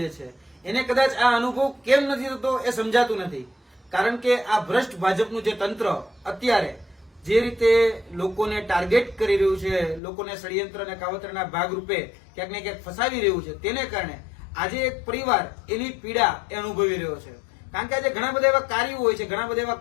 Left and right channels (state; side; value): drops out; right; at 10.0 s